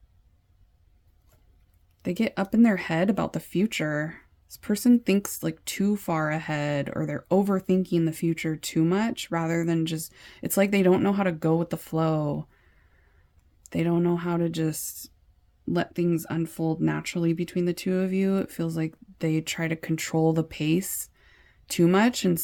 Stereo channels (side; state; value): both; identical; correlation 1.00